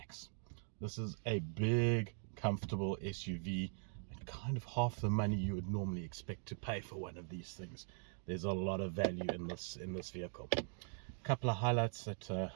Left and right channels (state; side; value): silent; left; 50 dB below the other